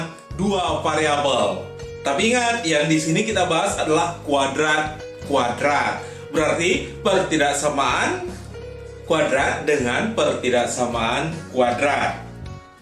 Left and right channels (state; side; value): identical; both; correlation 1.00